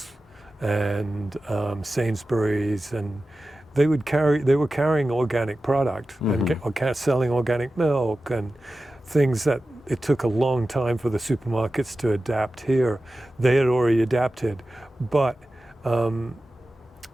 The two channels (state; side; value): normal; both; correlation 0.94